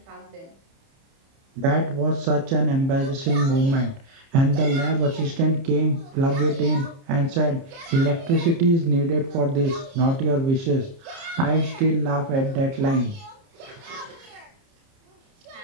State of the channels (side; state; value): left; late; 30 ms